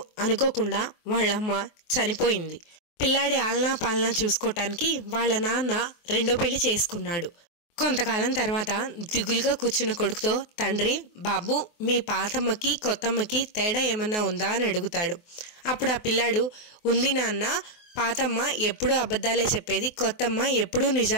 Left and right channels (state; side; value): late; right; 24 ms